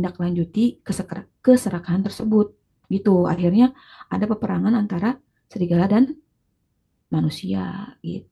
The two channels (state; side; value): identical; both; correlation 1.00